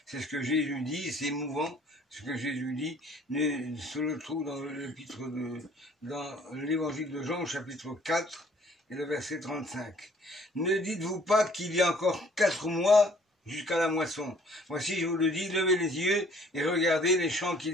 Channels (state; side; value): normal; both; correlation 0.57